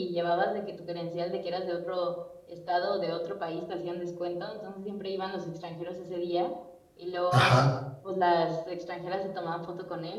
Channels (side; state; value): both; identical; correlation 1.00